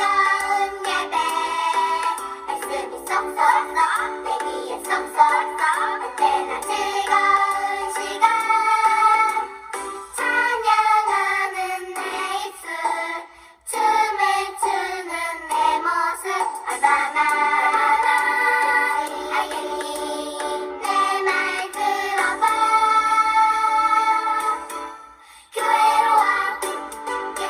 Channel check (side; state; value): both; identical; correlation 1.00